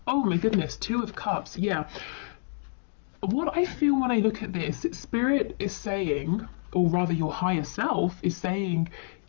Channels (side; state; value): right; silent; digital silence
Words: Oh my goodness, Two of Cups. Yeah. What I feel when I look at this, Spirit is saying, or rather your higher self is saying,